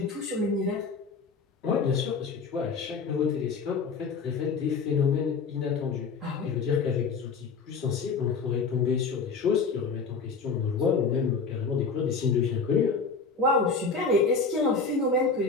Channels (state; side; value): quieter; right; 4.8 dB